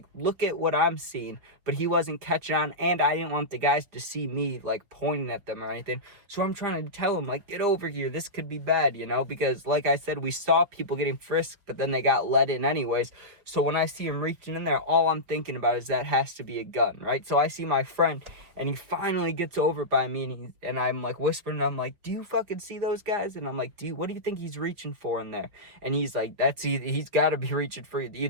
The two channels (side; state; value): left; late; 5.3 ms